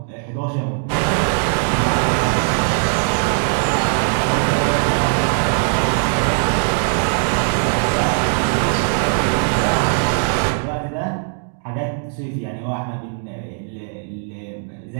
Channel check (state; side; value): silent; left; 59 dB below the other